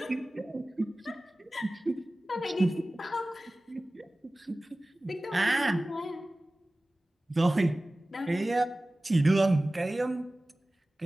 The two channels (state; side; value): normal; both; correlation 0.97